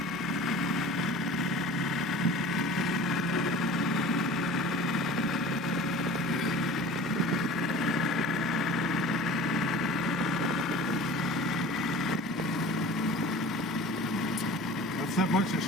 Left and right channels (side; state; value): both; normal; correlation 0.40